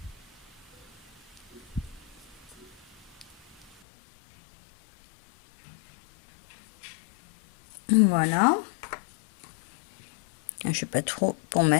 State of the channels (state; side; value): drops out; right; at 3.8 s